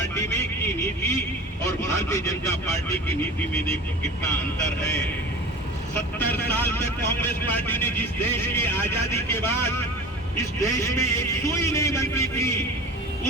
में की नीति और भारतीय जनता पार्टी की नीति में देखो कितना अंतर है। 70 साल तक कांग्रेस पार्टी ने जिस देश की आजादी के बाद इस देश में एक सुई नहीं बनती थी,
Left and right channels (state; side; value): normal; both; correlation 0.36